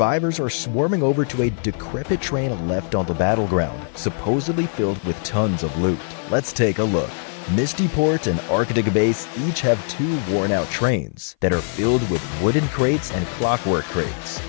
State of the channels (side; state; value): right; silent; 58 dB below the other